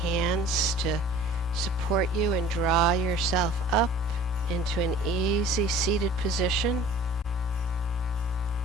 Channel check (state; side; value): normal; both; correlation 0.47